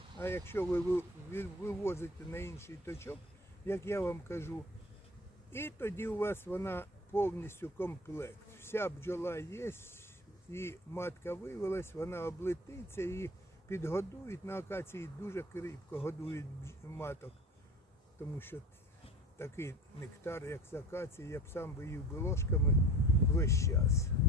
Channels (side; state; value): both; normal; correlation 0.41